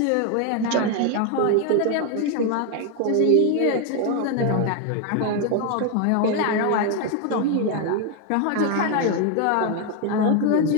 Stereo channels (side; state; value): both; different; correlation 0.01